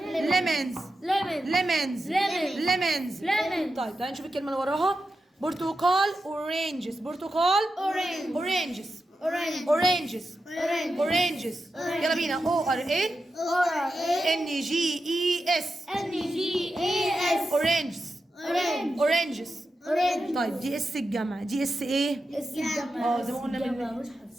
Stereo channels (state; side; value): normal; both; correlation 0.90